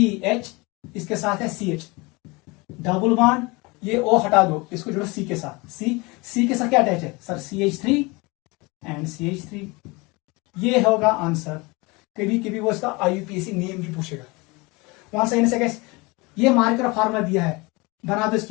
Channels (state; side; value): quieter; right; 25.5 dB